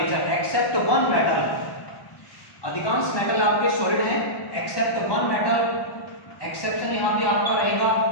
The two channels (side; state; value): right; late; 1.2 ms